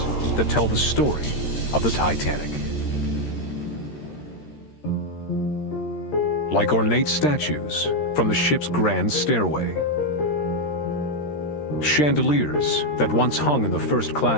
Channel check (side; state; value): right; late; 13 ms